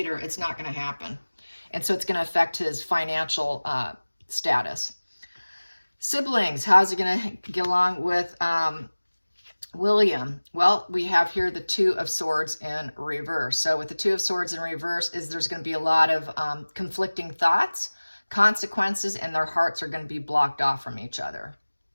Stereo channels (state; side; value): inverted; both; correlation -1.00